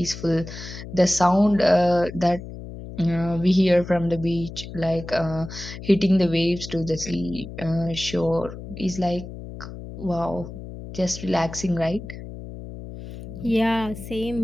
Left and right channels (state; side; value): noise; left; hum, 12 dB below the sound